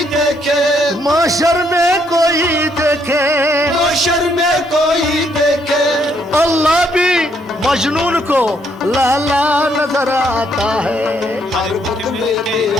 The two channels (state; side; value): normal; both; correlation 0.71